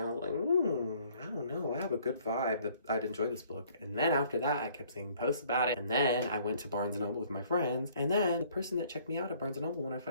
was like, I don't know, I have a good vibe that I'd enjoy this book. And then after that, I kept seeing posts about it, and then I went to Barnes & Noble with my friends, and then the person that checked me out at Barnes & Noble when I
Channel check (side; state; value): both; inverted; correlation -0.59